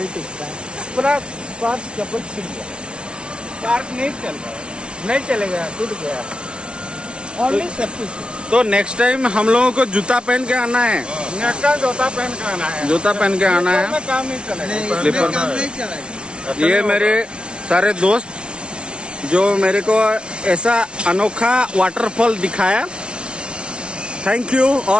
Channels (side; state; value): left; late; 0.057 ms